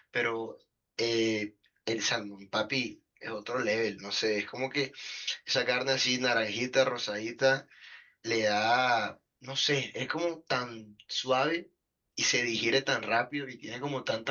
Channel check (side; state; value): both; identical; correlation 1.00